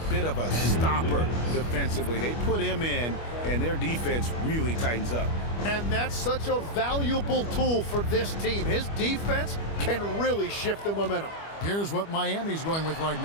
bit of a stopper defensively. They put him in, and their defense really tightens up. And that's such a valuable tool for this team. His defense can really shift the momentum. Here's what Miami's going with right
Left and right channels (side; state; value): right; late; 25 ms